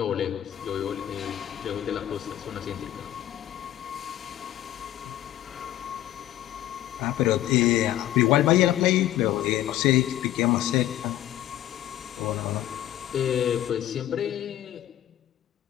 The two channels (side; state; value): right; quieter; 12.9 dB